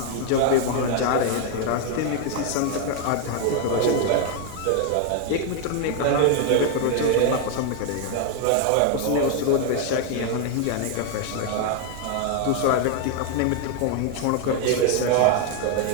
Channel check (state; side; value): different; both; correlation 0.00